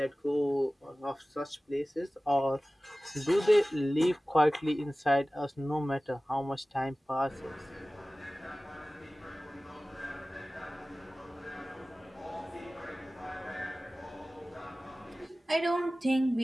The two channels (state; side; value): normal; both; correlation 0.97